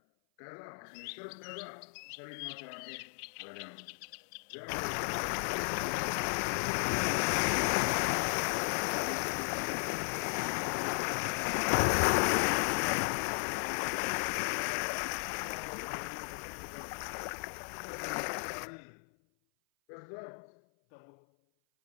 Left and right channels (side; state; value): right; silent; 55 dB below the other